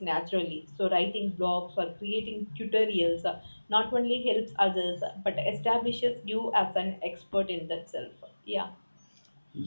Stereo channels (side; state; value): both; inverted; correlation -1.00